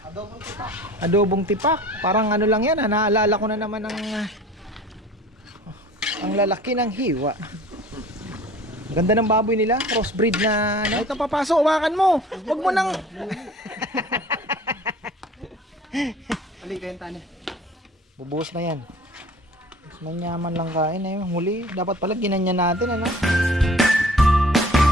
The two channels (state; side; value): normal; both; correlation 0.45